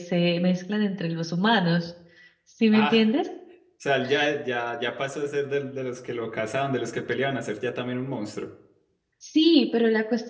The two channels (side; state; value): both; identical; correlation 1.00